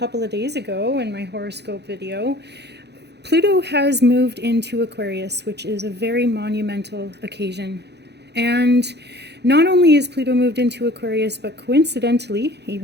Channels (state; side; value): late; left; 0.49 ms